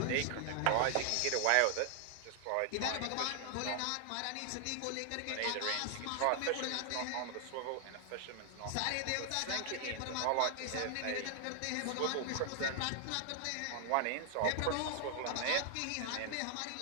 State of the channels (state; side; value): different; both; correlation 0.00